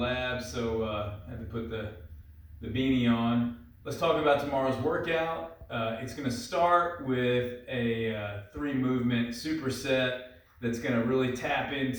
so I had to put the beanie on. Let's talk about tomorrow's workout. It's going to start with a 3-movement superset that's going to really tap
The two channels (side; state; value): both; identical; correlation 1.00